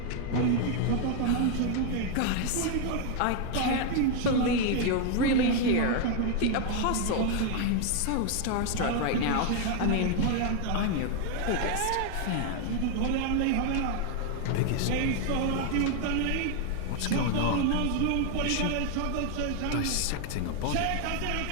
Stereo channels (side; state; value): both; different; correlation 0.01